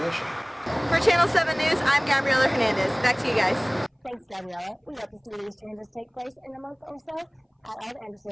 For Channel 7 News, I'm Gabriela Hernandez. Back to you guys. Thanks, Gabriela. We hope to see these changes take place in a month or so at all the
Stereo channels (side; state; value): both; identical; correlation 1.00